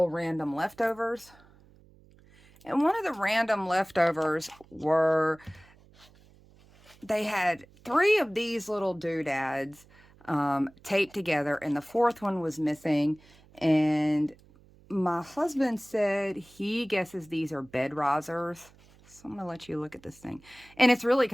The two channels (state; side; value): noise; right; hum, 27 dB below the sound